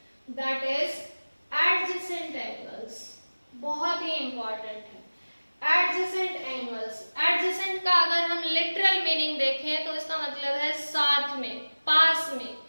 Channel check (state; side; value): inverted; both; correlation -1.00